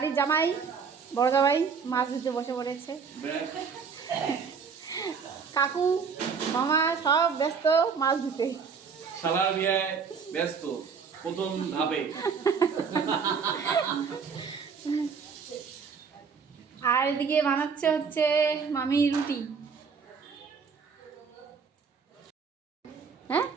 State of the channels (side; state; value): left; quieter; 5.9 dB